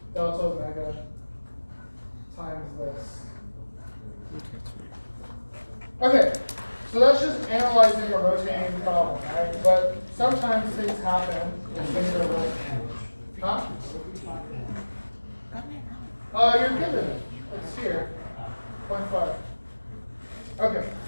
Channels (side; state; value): both; inverted; correlation -1.00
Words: delta omega times this. Okay, so that's just analyzing a rotating problem, right? But sometimes things happen when things are rotating. Huh? You're given it. It's here. 0.5. Okay.